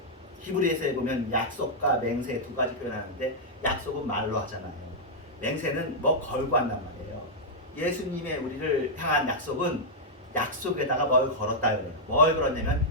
히브리서에 보면 약속과 맹세 두 가지 표현하는데 약속은 말로 하잖아요. 맹세는 뭐 걸고 한단 말이에요. 예수님의 우리를 향한 약속은 약속에다가 뭘 걸었다 그래요. 뭘 걸었냐면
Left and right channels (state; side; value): normal; both; correlation -0.06